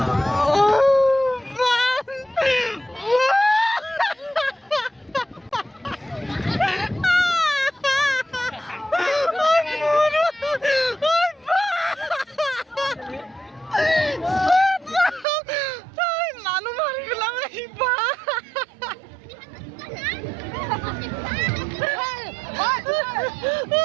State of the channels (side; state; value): left; drops out; at 15.2 s